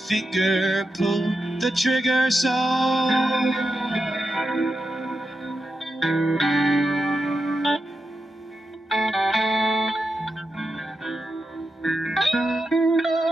pulled the trigger, so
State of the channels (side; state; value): both; normal; correlation 0.88